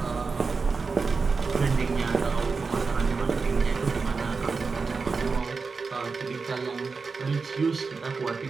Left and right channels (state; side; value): quieter; left; 4.6 dB